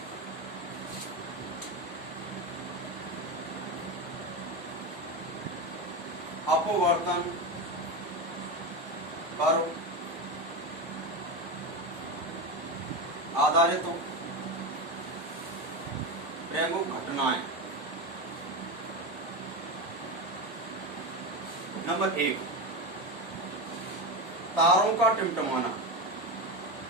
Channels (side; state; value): both; normal; correlation 0.17